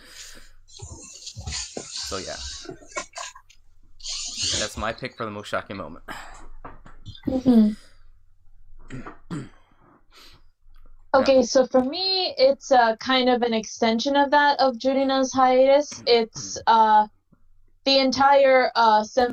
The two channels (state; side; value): identical; both; correlation 1.00